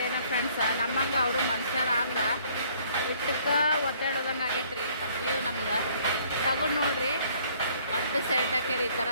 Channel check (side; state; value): both; inverted; correlation -0.60